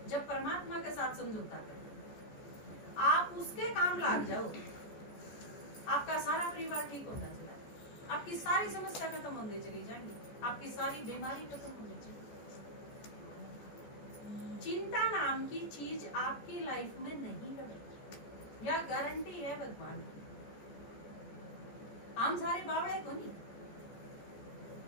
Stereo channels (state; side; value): late; right; 14 ms